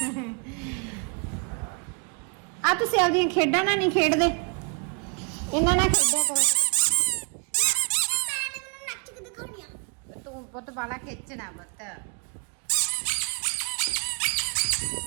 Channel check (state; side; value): quieter; left; 36.5 dB